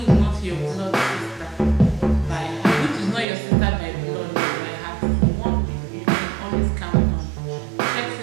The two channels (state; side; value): drops out; left; at 3.2 s